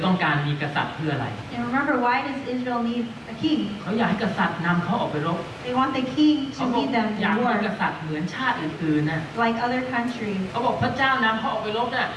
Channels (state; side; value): identical; both; correlation 1.00